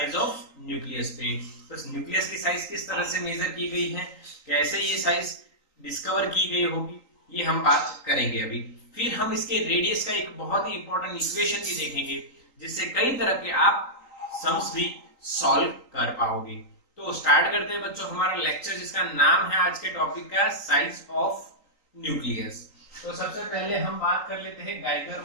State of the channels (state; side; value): late; right; 3.8 ms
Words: ऑफ न्यूक्लियस पे। तो न्यूक्लियस की साइज किस तरह से मेजर की गई है, कैसे ये साइज डिस्कवर की गई होगी, ये हम बात करेंगे अभी। फिर हम इसके रेडियस का एक बहुत ही इंपॉर्टेंट इक्वेशन भी देखेंगे, जिससे कई तरह के आप सम्स भी सॉल्व कर पाओगे। तो स्टार्ट करते हैं बच्चों हमारा लेक्चर, जिसका नाम है आज के टॉपिक का साइज ऑफ न्यूक्लियस। तो सबसे पहले हम बात कर लेते हैं गाइगर